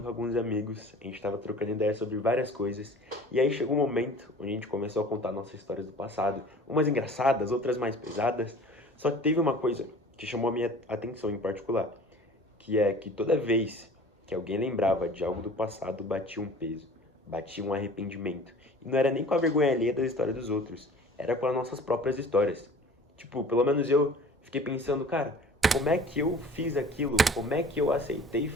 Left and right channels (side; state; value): both; normal; correlation 0.45